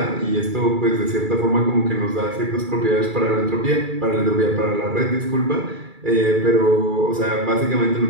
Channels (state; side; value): late; left; 2.3 ms